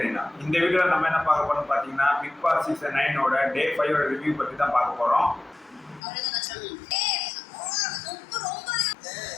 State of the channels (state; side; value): drops out; right; at 6.0 s